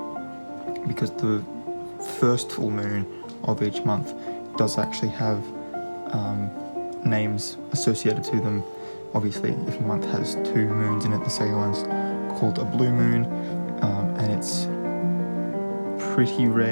because the first full moon of each month does actually have names associated to them. Obviously, if a month has two moons in it, the second one's called a blue moon, and it's pretty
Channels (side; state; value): both; inverted; correlation -1.00